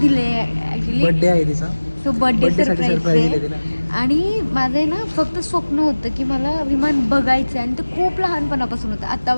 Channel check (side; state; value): both; inverted; correlation -1.00